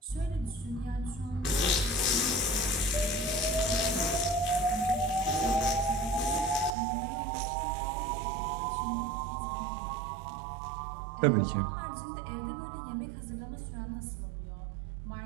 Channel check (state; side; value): drops out; left; at 6.7 s